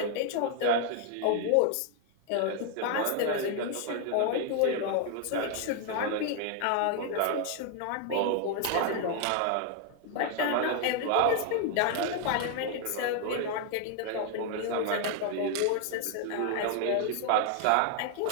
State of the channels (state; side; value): different; both; correlation 0.00